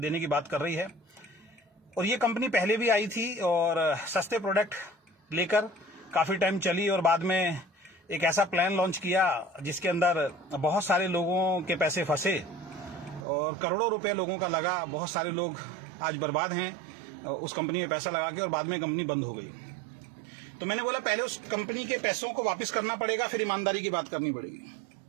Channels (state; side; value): drops out; left; at 13.2 s